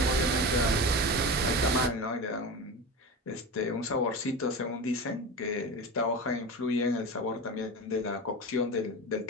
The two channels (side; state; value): both; normal; correlation 0.26